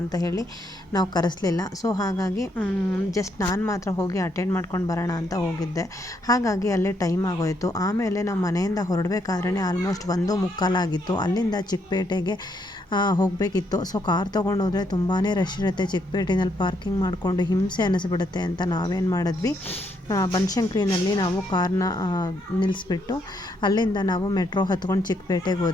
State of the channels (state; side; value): normal; both; correlation 0.75